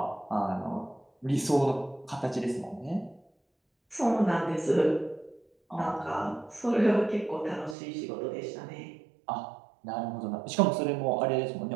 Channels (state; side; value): drops out; left; at 7.8 s